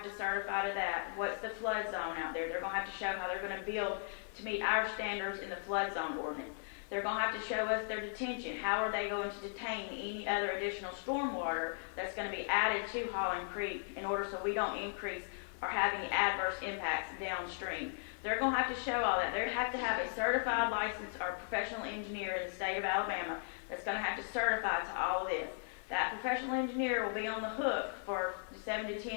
to certify to that. What's the flood zone out there? They're gonna have to show how they're gonna build to meet our standards in the flood zone ordinance. They're gonna have to show us their detention. How are they going to detain any other additional stormwater that's gonna be added to Holland Creek in order so we don't increase or have any adverse impacts downstream? They're gonna have to show all that. They have to have a certified licensed or professional engineer in the state of Alabama that's gonna have to certify to all of this. That professional engineer will be on the hook for 7 to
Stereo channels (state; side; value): silent; right; 53 dB below the other